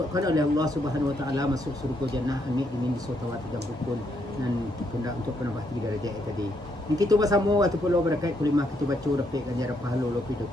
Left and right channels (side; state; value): both; normal; correlation 0.75